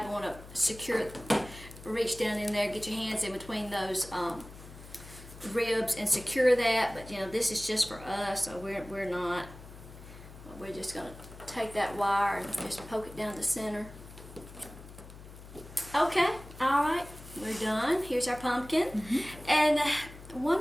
want to secure it, reach down in there, get your hands in between those ribs and secure that. But, you know, this is just for us, so we're not. We're just going to take that wire and just poke it down the center. Okay, alright, we're done. Here's our pumpkin. Mm-hmm. And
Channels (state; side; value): noise; left; hum, 16 dB below the sound